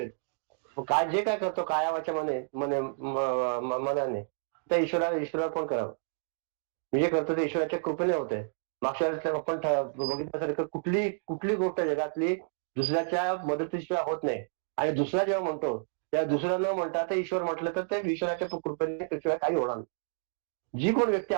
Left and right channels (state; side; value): silent; left; digital silence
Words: काय जे काय करतो कायावाच्या मनाने त्या ईश्वराला पण करावं. मी जे करतो ते ईश्वराच्या कृपेने होते. मागच्या वेळेस आपण बघितल्यासारखं कुठली गोष्ट जगातली दुसऱ्याच्या मदतीशिवाय होत नाही. आणि दुसरा जेव्हा म्हणतो त्या दुसरा न म्हणता ते ईश्वर म्हटलं तर ते ईश्वराच्या कृपेने त्याशिवाय काही होणार नाही. जी कोण व्यक्ती